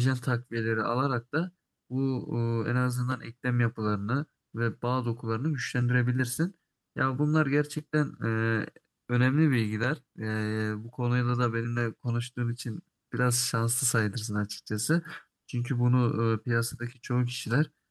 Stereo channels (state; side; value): identical; both; correlation 1.00